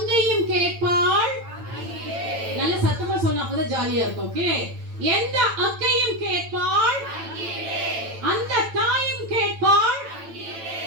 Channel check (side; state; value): left; late; 9.0 ms